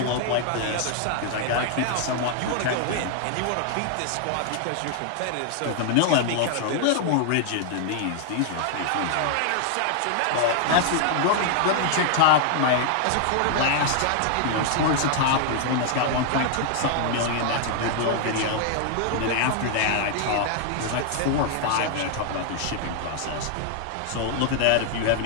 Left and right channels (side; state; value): both; different; correlation 0.00